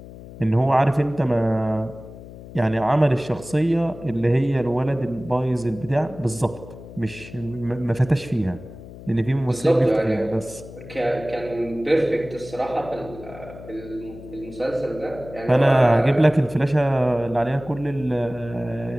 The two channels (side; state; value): left; noise; hum, 16 dB below the sound